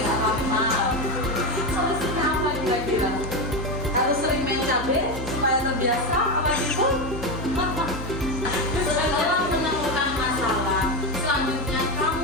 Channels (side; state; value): both; normal; correlation 0.15